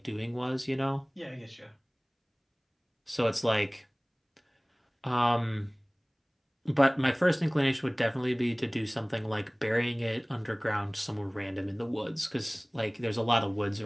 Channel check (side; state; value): both; identical; correlation 1.00